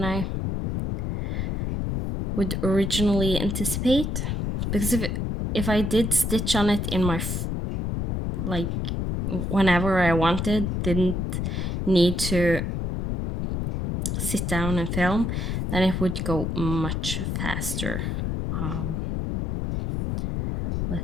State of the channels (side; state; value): left; noise; rumble, 1 dB below the sound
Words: I would originally anticipate. Because if I did stitch on it in my like whenever I wanted, didn't need to sit down and film, then it would go much faster